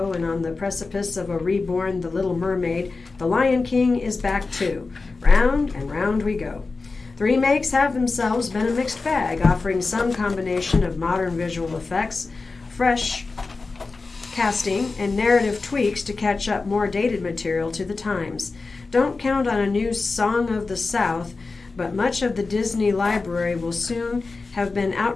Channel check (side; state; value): right; quieter; 3.9 dB